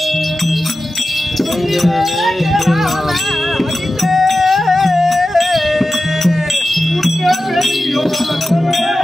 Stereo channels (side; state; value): both; normal; correlation 0.93